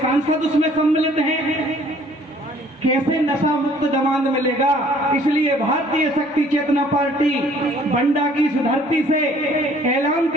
उसमें सम्मिलित हैं। कैसे नशा मुक्त दामाद मिलेगा? इसलिए भारतीय शक्ति चेतना पार्टी बंडा की इस धरती से ऐलान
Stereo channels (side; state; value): both; normal; correlation 0.57